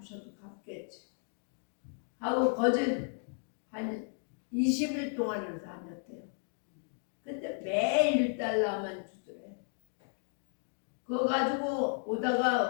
갚겠지 하고 거짓 한 20일 동안을 다녔대요. 근데 매일 1달러만 주더래. 그거 가지고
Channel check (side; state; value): right; silent; 55 dB below the other